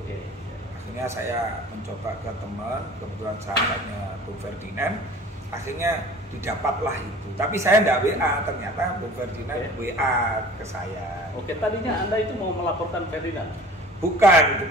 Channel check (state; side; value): normal; both; correlation 0.45